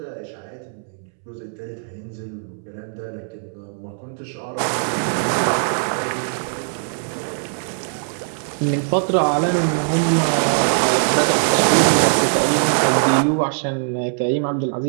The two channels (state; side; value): silent; left; 65 dB below the other